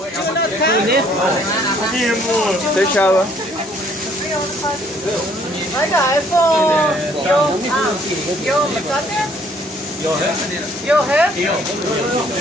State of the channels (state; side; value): normal; both; correlation 0.62